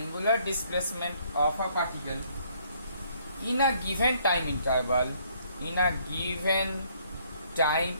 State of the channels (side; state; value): both; inverted; correlation -0.65